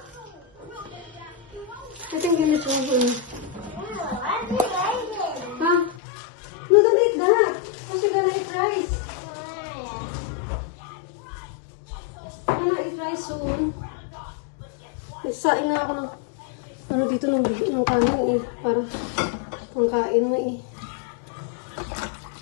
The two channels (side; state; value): right; drops out; at 6.0 s